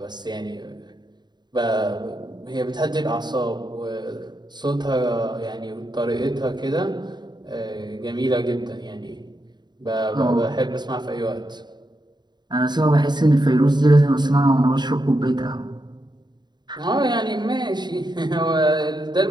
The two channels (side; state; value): left; late; 0.21 ms